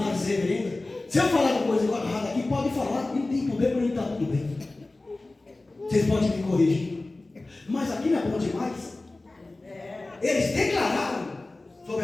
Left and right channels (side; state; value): right; quieter; 3.0 dB